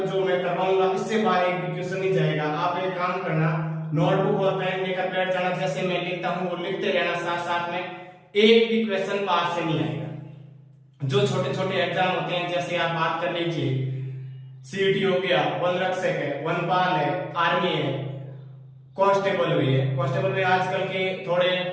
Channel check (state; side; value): identical; both; correlation 1.00